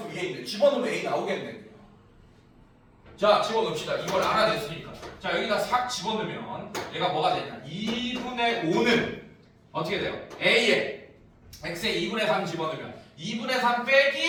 위에 있는데 집어넣으면 A 나오겠네. 자, 집어넣읍시다. 이걸 알아냈으니까. 자, 여기다 싹 집어넣으면 얘가 뭐가 되냐? 2분의 5는 어떻게 돼요? A에 X에 2분의 3 집어넣으면 2분의 3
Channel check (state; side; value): identical; both; correlation 1.00